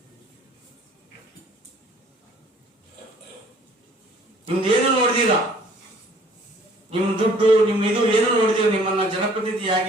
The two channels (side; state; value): both; normal; correlation 0.56